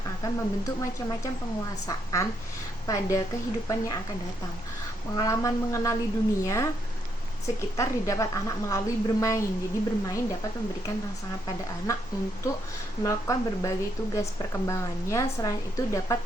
akan membentuk macam-macam penguasaan pada kehidupan yang akan datang. Pengalaman mengenali dunia sekitar didapat anak melalui bermain. Jadi bermain dapat memberikan rangsangan pada anak untuk melakukan berbagai tugas perkembangannya. Selain itu dapat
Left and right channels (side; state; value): both; normal; correlation 0.76